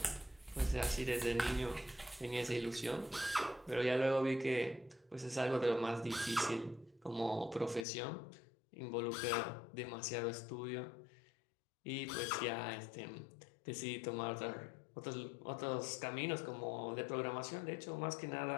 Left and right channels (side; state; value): right; drops out; at 7.9 s